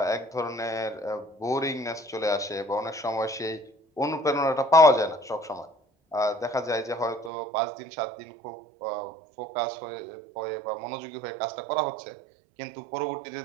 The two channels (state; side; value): drops out; left; at 7.3 s